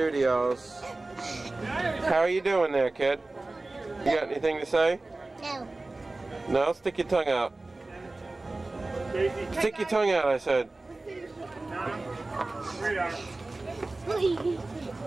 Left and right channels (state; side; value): quieter; left; 3.1 dB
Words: How are you doing there, kid? You got anything to say? No. No? Stick your tongue out. Stick your tongue out, I said.